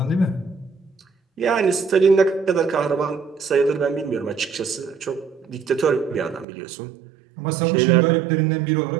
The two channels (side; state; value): left; drops out; at 6.5 s